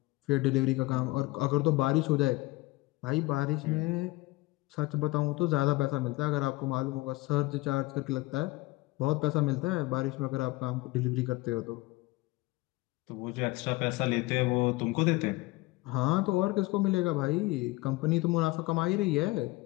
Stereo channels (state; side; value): quieter; right; 21.3 dB